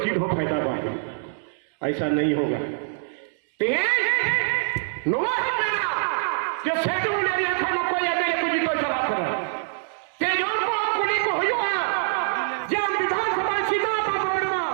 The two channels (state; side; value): silent; left; digital silence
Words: हो फायदा बात ऐसा नहीं होगा जो सेठ ने देखा न कोई मेरे कुछ को चला कर तेजों को कुली को हुआ जब विधानसभा सीधा पावरमा